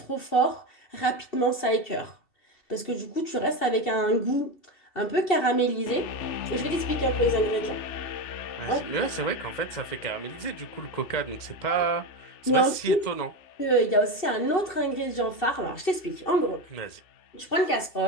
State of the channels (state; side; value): late; right; 2.7 ms